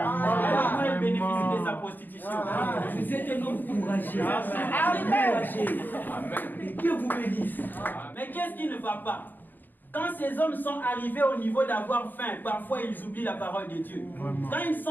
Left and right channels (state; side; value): late; right; 0.089 ms